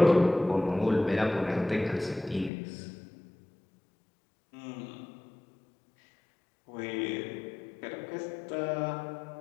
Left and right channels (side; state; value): right; drops out; at 2.5 s